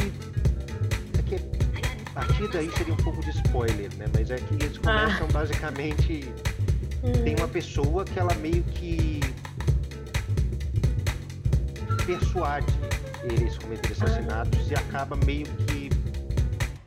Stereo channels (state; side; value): identical; both; correlation 1.00